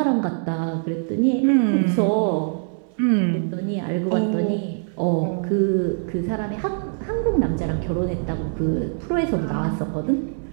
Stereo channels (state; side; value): silent; left; 63 dB below the other